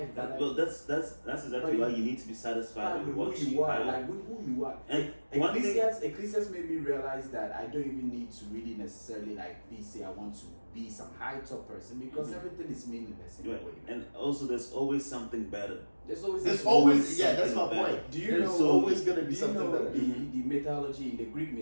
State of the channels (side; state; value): both; inverted; correlation -1.00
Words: That Well, that's exactly why you need to be satisfied with what who you are, have. like with who you are. And one thing, Ecclesiastes made me realize that I don't even need to really necessarily say I want to be some high top person because everything is meaningless in a right. way. And also there's always something better. There's always There's always that's my something better. point. Do you There's know? always gonna be do you something know better. the mythology, the Greek